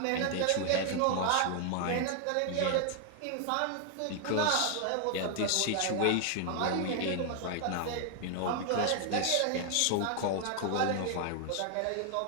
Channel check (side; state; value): both; different; correlation 0.00